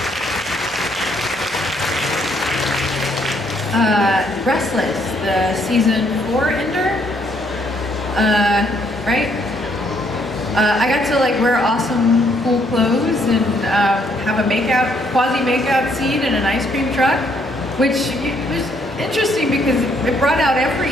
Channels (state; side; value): normal; both; correlation 0.69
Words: Restless, the season 4 ender, right? I got to like wear awesome cool clothes and have a quasi makeout scene in an ice cream truck, which was interesting because it brought out